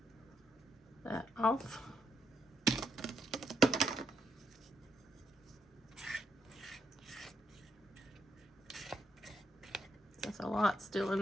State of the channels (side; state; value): both; normal; correlation 0.79